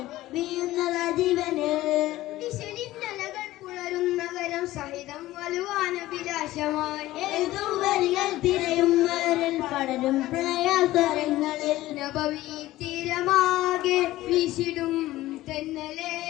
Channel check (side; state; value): right; quieter; 16.3 dB